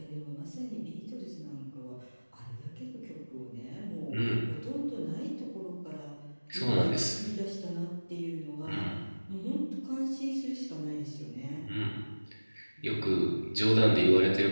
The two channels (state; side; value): inverted; both; correlation -1.00